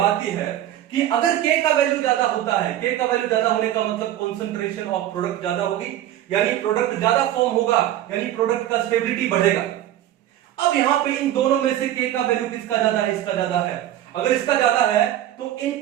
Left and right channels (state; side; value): quieter; left; 12.6 dB